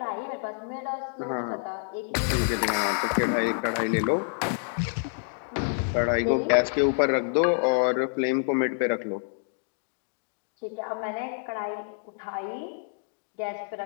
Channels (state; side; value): silent; right; digital silence